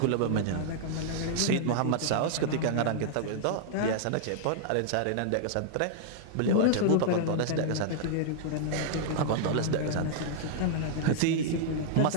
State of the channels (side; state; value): both; different; correlation -0.01